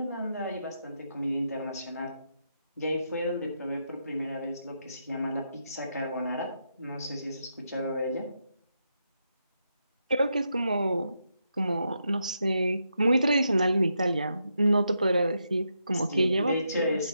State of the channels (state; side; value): inverted; both; correlation -0.82